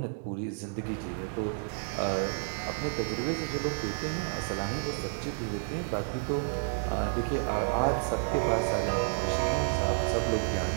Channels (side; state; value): left; silent; 57 dB below the other